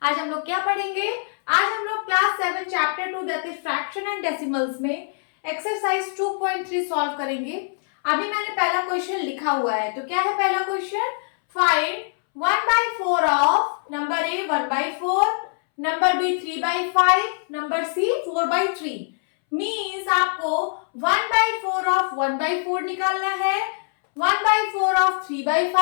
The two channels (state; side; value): silent; right; 63 dB below the other